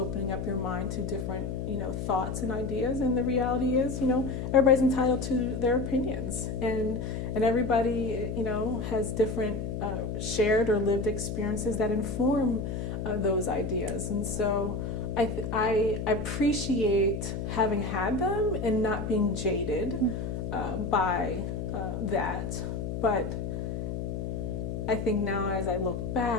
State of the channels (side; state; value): left; noise; hum, 4 dB below the sound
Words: up your mind to different, thoughts and ideas. And the reality is, everybody's entitled to their opinions and everybody, has different shared or lived experiences that inform those ideas. And so I appreciate having had them and not being jaded by that. But I think now as I look